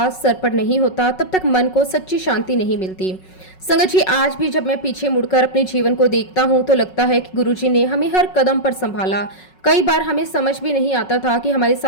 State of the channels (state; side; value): late; right; 5.4 ms